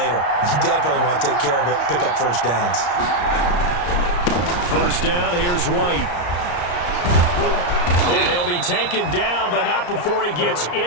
You definitely want to take care of it, pick up first downs. First down, here's White. And he'll be taken down, but not before he gets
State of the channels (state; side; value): late; right; 34 ms